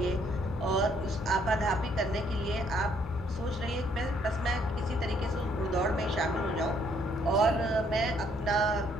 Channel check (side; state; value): both; normal; correlation 0.67